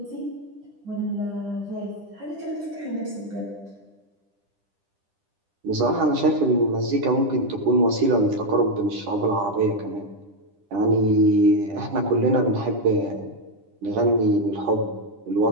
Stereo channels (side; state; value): left; late; 10 ms